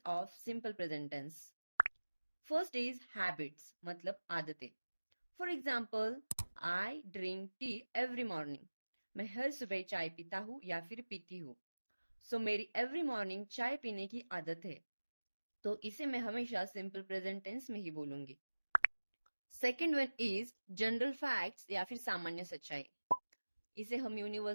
of simple present tense. First is habits मतलब आदतें। For example, I drink tea every morning. मैं हर सुबह चाय पीता हूँ या फिर पीती हूँ। मेरी एवरी मॉर्निंग चाय पीने की आदत है, तो इसे मैं हमेशा सिंपल प्रेजेंट टेंस में ही बोलूंगी। Second one is general facts या फिर सामान्य सच्चाई। इसे हम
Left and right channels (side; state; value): both; inverted; correlation -1.00